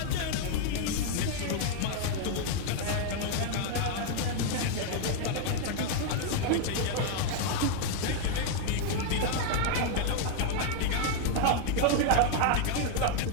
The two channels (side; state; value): both; different; correlation 0.00